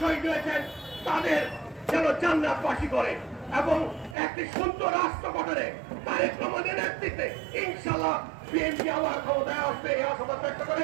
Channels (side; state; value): left; drops out; at 4.2 s